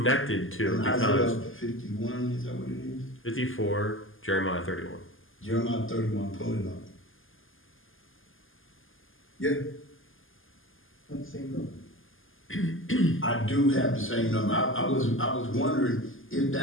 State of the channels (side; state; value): right; late; 0.59 ms